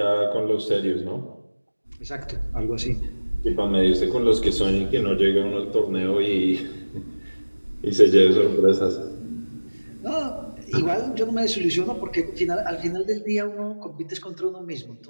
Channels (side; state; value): both; inverted; correlation -1.00